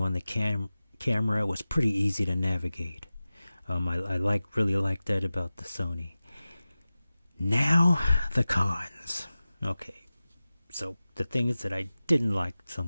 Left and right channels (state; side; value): inverted; both; correlation -0.96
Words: the camera, it was pretty easy to navigate. I really like that about the Sony. Now, the cons. Okay, so the things that I didn't like so